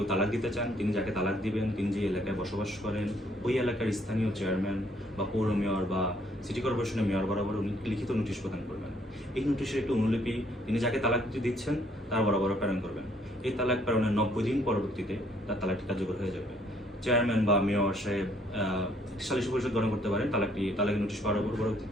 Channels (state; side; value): normal; both; correlation 0.65